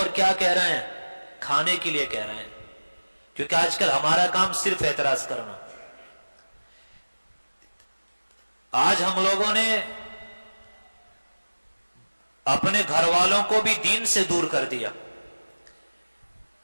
کیا کہہ رہے ہیں؟ کھانے کے لیے کہہ رہے ہیں، کیونکہ آج کل ہمارا کام صرف اعتراض کرنا۔ آج ہم لوگوں نے اپنے گھر والوں کو بھی دین سے دور کر دیا،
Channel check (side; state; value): both; inverted; correlation -1.00